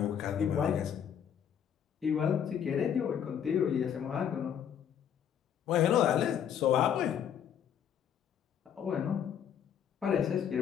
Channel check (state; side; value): quieter; right; 8.8 dB